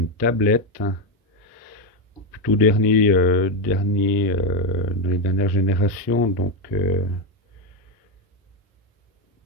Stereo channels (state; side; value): normal; both; correlation 0.08